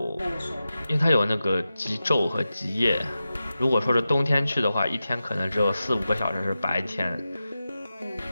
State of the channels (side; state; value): both; inverted; correlation -0.92